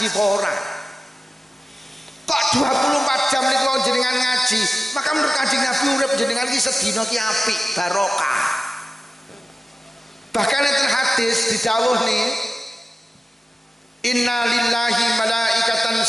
apa ora? Kok 24 jam niku jenengan ngaji, maka menurut Kanjeng Nabi urip jenengan ki sedina ki apik, barokah. Bahkan enten hadis didhawuh nih, inna lillahi malaikatan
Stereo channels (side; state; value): both; normal; correlation 0.95